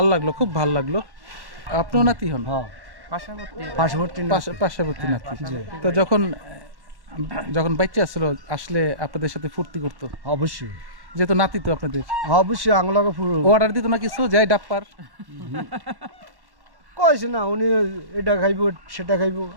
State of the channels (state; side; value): late; left; 1.1 ms